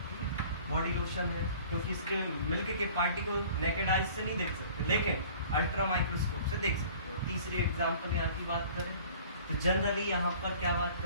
ठीक है। बॉडी लोशन है क्योंकि इसके मिल्क के पार्टिकल नेकेड आइज से नहीं देख सकते, लेकिन अल्ट्रा माइक्रोस्कोप से देख सकते हो। तीसरे एग्जाम्पल यहाँ की बात करें तो जनरली यहाँ पर क्या बात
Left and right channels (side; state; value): both; inverted; correlation -0.48